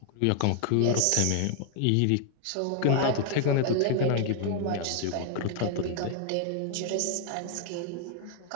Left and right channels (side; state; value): both; different; correlation 0.00